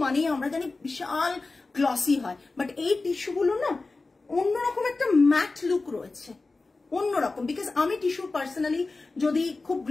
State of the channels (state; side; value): quieter; right; 3.6 dB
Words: মানে আমরা জানি বিশাল গ্লসি হয়, বাট এই টিস্যুগুলো না অন্যরকম একটা ম্যাট লুক রয়েছে, অন্যরকম। বিকজ আমি টিস্যু পার্সোনালি যদি খুব